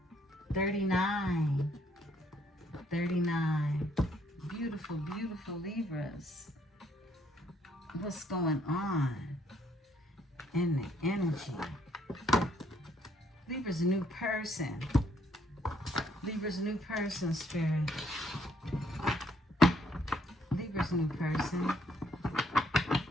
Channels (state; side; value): normal; both; correlation 0.68